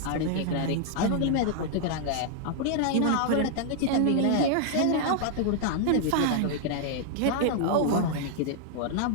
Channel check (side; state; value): both; different; correlation 0.00